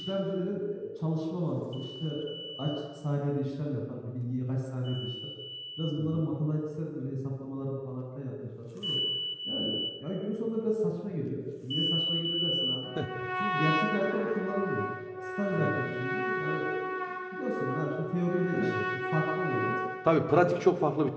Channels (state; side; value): identical; both; correlation 1.00